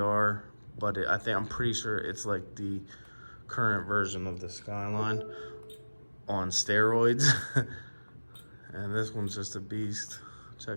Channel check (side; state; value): both; inverted; correlation -1.00